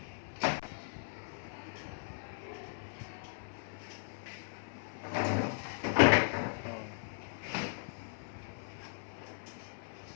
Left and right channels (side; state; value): right; silent; 53 dB below the other